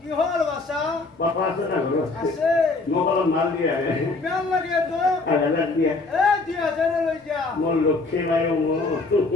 কি হল বাসা পাপা আছে না ঘৰত আছে মোক অলপ মাল দিয়া কিমান লাগে তো 1000 দিয়া এ দিয়া জানে লৈ যা মোৰ লক্ষ্মী নাই মোৰ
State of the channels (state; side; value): quieter; right; 3.6 dB